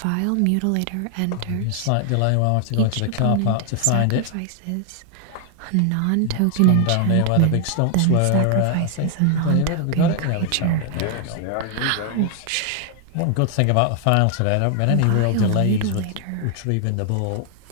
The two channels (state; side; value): different; both; correlation 0.00